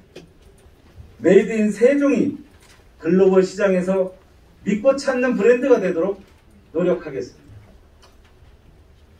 메이드 인 세종이 글로벌 시장에서 믿고 찾는 브랜드가 되도록 노력하겠습니다.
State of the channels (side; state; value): both; identical; correlation 1.00